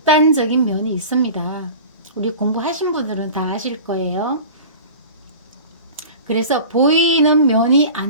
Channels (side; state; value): both; inverted; correlation -0.37